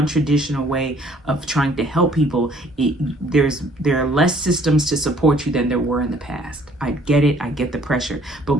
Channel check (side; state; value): both; normal; correlation 0.59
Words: way of trying to help people, there are less systems to support you than there were in the past. I get it. I get the pressure,